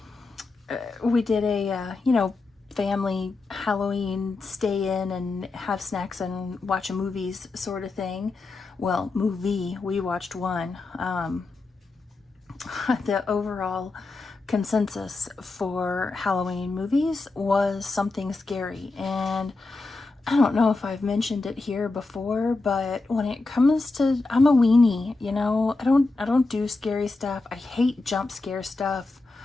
did a family Halloween stay in and have snacks and watch a movies sort of thing. Well, movie, we watched one. The overall consensus for Halloween movies was something scary, and I don't know if I've mentioned it here before, but when it comes to, I'm a weenie, I don't do scary stuff. I hate jump scare stuff,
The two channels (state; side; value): quieter; right; 3.5 dB